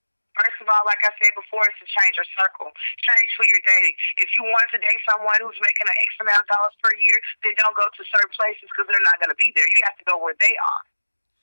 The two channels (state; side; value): inverted; both; correlation -1.00